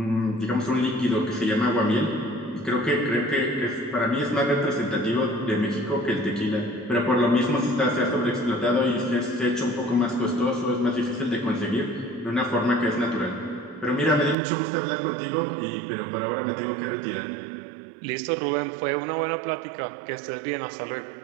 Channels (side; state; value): left; drops out; at 14.4 s